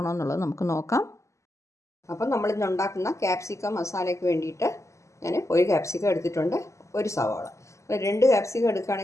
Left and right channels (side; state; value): right; late; 0.14 ms